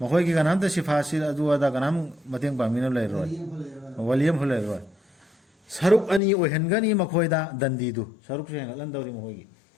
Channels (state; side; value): drops out; right; at 6.2 s